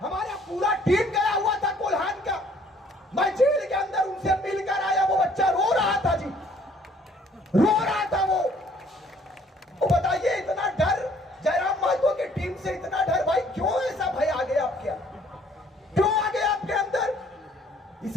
हमारा पूरा टीम गया हुआ था कोल्हान का, मैं जेल के अंदर उनसे मिलकर आया। वो बच्चा रो रहा था जी, रो रहा था वो। बताइए इतना डर जयराम महतो की टीम से, इतना डर भाई क्यों ऐसा भय आ गया आपके अंदर, क्यों आ गया आपके अंदर?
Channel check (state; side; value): normal; both; correlation 0.60